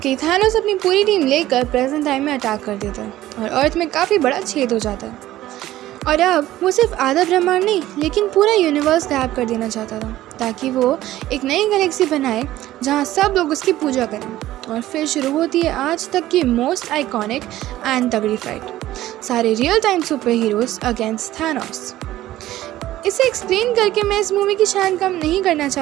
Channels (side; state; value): left; quieter; 14.7 dB